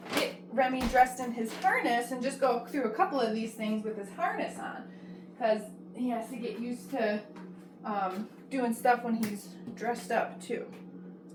get Remy dressed in his harness and just go through a couple of these things with his harness on because he has to get used to doing stuff when he's dressed up too,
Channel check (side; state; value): both; identical; correlation 1.00